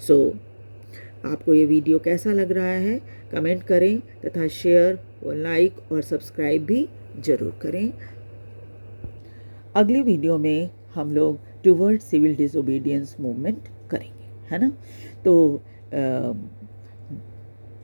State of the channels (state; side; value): inverted; both; correlation -1.00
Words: आपको ये वीडियो कैसा लग रहा है कमेंट करें तथा शेयर और लाइक और सब्सक्राइब भी ज़रूर करें। अगली वीडियो में हम लोग टुवर्ड सिविल डिसोबीडियंस मूवमेंट करेंगे, है ना। तो